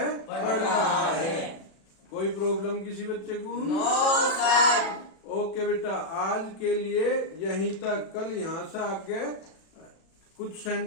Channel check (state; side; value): late; right; 37 ms